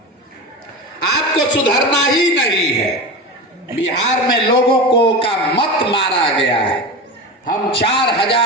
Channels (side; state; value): both; normal; correlation 0.25